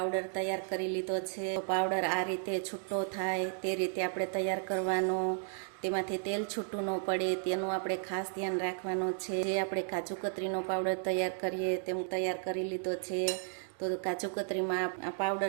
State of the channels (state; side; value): silent; left; digital silence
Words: તૈયાર કરી લીધો છે। પાવડર આ રીતે છૂટો થાય તે રીતે આપણે તૈયાર કરવાનો, તેમાંથી તેલ છૂટું ન પડે તેનું આપણે ખાસ ધ્યાન રાખવાનું છે। જે આપણે કાજુ કતરીનો પાવડર તૈયાર કરીએ તેમ તૈયાર કરી લીધો છે। તો કાજુ કતરીમાં આ